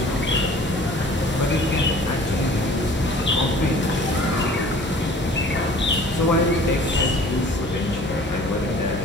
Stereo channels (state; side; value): normal; both; correlation 0.48